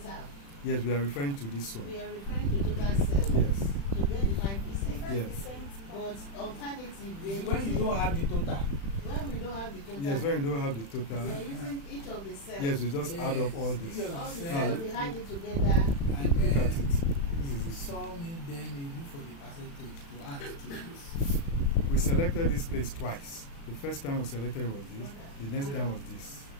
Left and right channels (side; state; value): right; late; 36 ms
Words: Yes, we are referring to this one. We are referring to total cells Yes. to get the 5%. Yes. But alternative, we are when you don't have the total. when we don't have the total. Yes, when we don't have the We total. are using each of the cells. Yes, we just add up all this. Yes. All the Now, cells, we add it together. And Look at then it. This is it. saw me, then you look for the percentage to add to this. We selected this place twice. The first time we selected was this. The next time was this.